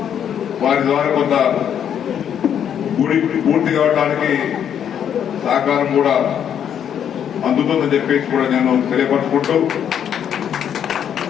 వారి ద్వారా కొంత గుడి పూర్తి కావడానికి సహకారం కూడా అందుతుందని చెప్పేసి కూడా నేను తెలియపరుచుకుంటూ,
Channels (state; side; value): quieter; right; 9.0 dB